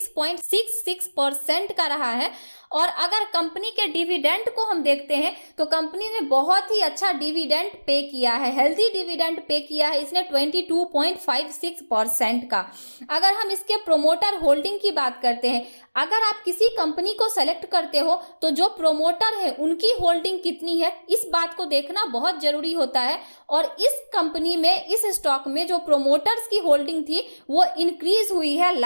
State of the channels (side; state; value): both; inverted; correlation -1.00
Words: का रहा है। और अगर कंपनी के डिविडेंड को हम देखते हैं तो कंपनी ने बहुत ही अच्छा डिविडेंड पे किया है, हेल्दी डिविडेंड पे किया है इसने 22.56% का। अगर हम इसके प्रोमोटर होल्डिंग की बात करते हैं, अगर आप किसी कंपनी को सेलेक्ट करते हो तो जो प्रोमोटर है उनकी होल्डिंग कितनी है इस बात को देखना बहुत जरूरी होता है। और इस कंपनी में, इस स्टॉक में जो प्रोमोटर्स की होल्डिंग थी वो इंक्रीज हुई है